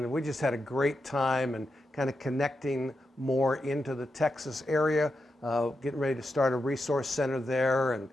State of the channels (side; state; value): both; normal; correlation 0.87